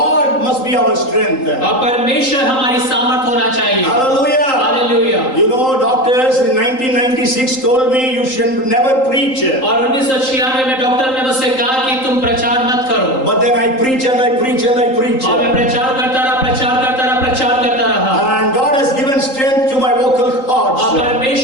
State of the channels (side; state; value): right; late; 3.8 ms